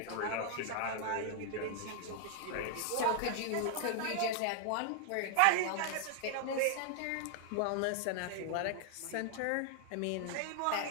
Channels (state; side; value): different; both; correlation 0.00